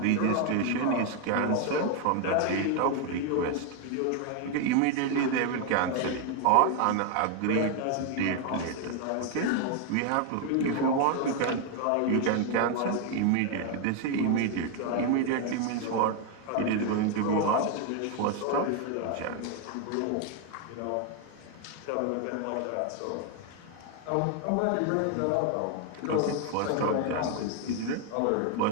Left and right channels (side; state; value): both; different; correlation 0.01